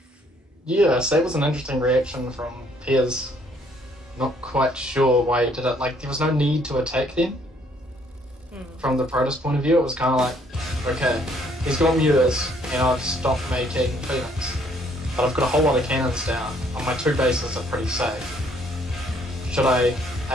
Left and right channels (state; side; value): normal; both; correlation 0.65